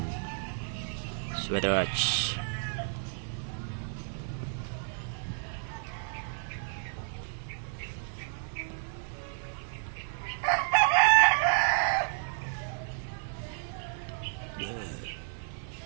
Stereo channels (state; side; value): silent; left; digital silence